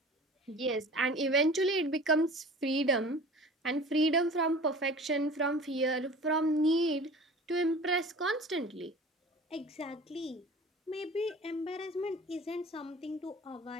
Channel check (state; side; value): normal; both; correlation 0.42